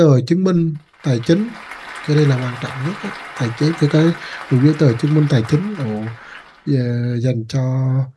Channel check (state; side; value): identical; both; correlation 1.00